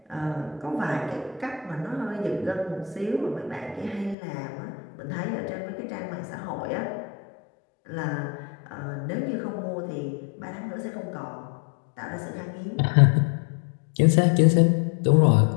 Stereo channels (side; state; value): right; drops out; at 4.2 s